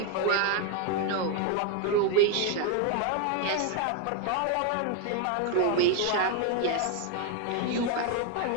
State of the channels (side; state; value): both; different; correlation 0.01